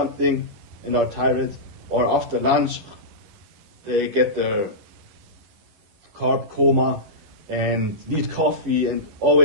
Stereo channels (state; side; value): late; left; 9.9 ms